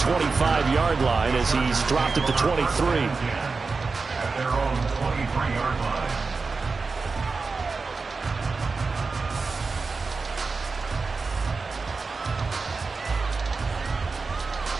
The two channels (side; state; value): left; quieter; 4.3 dB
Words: line as he's dropped at the 23.